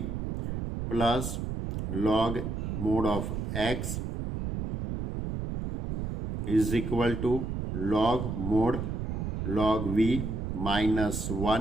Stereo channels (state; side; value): noise; right; rumble, 3 dB below the sound